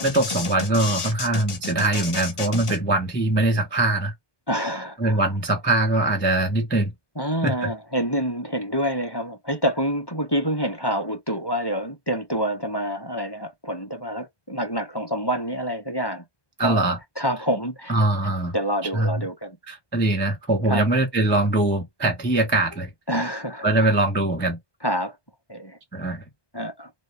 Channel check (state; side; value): late; right; 1.2 ms